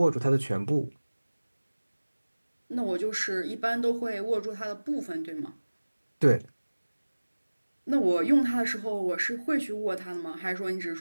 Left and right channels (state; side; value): inverted; both; correlation -1.00